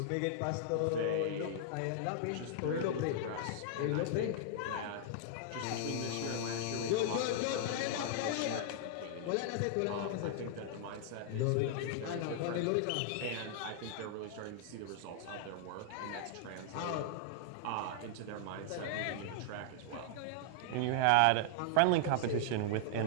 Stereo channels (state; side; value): different; both; correlation -0.01